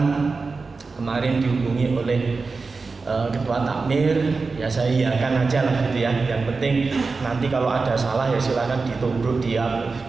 kemarin dihubungi oleh ketua takmir, ya saya iakan aja lah gitu ya. Yang penting nanti kalau ada salah ya silakan ditubruk, dia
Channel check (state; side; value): quieter; left; 4.2 dB